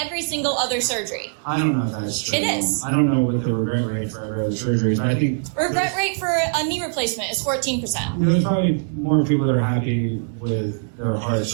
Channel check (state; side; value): silent; left; 61 dB below the other